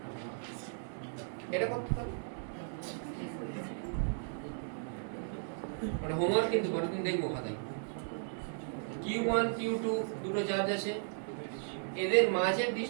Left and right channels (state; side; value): silent; left; digital silence